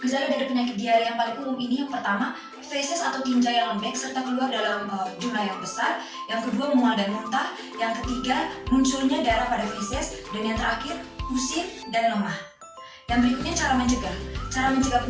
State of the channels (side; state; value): both; identical; correlation 1.00